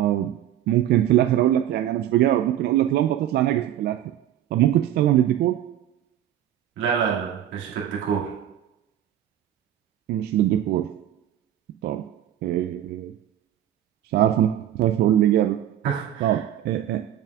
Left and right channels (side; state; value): left; quieter; 11.5 dB